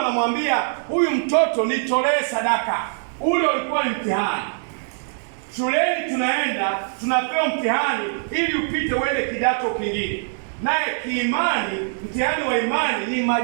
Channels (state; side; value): silent; left; digital silence